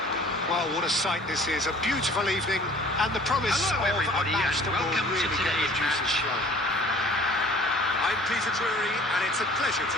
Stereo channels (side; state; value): both; normal; correlation 0.50